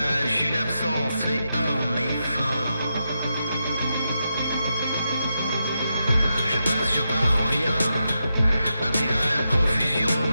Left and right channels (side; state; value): both; inverted; correlation -0.86